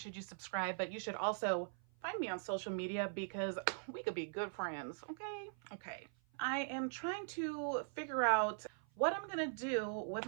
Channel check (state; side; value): silent; left; 50 dB below the other